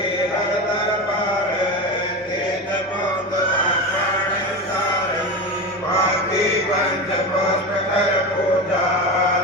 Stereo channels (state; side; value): normal; both; correlation 0.23